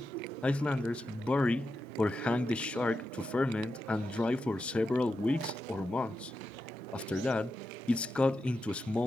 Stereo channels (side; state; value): both; normal; correlation 0.88